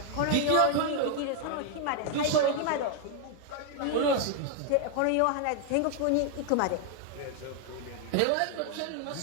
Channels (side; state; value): both; different; correlation 0.00